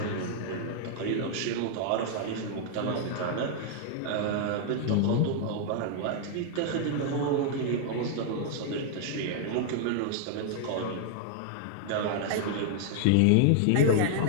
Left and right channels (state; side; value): different; both; correlation 0.00